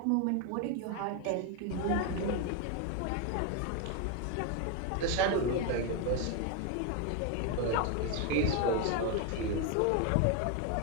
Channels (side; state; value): both; different; correlation 0.02